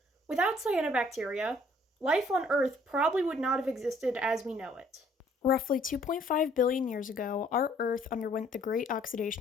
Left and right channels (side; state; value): both; normal; correlation 0.61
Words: Without cyanobacteria, life on Earth probably would not have existed as we know it. Roughly 2.5 billion years ago, our Earth underwent the Great